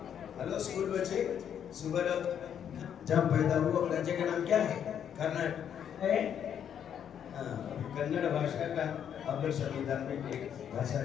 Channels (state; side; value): quieter; right; 8.9 dB